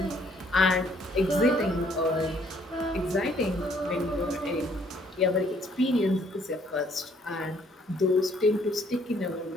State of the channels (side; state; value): both; normal; correlation 0.64